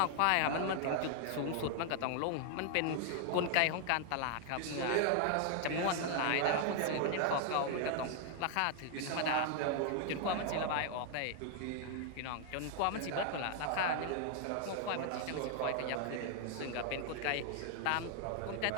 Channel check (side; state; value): both; different; correlation 0.00